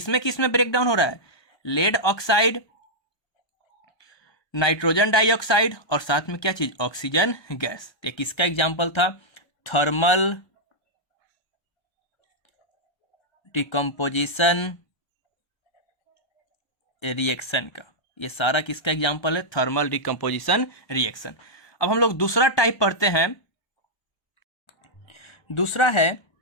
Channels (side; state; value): right; late; 1.2 ms